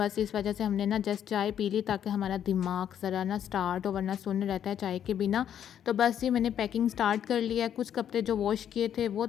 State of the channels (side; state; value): right; quieter; 9.6 dB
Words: इस वजह से हमने ना जस्ट चाय पी ली, ताकि हमारा दिमाग ज़रा ना स्टार्ट हो, वरना सुन्न रहता है चाय के बिना। तो बस ये मैंने पैकिंग स्टार्ट कर लिया है। कुछ कपड़े जो वॉश किए थे वो